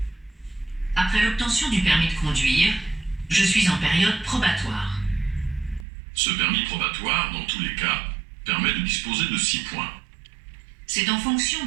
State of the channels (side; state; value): left; drops out; at 5.9 s